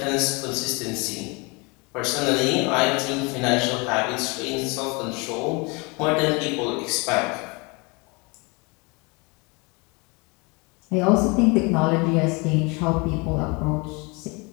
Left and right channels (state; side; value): quieter; right; 28.7 dB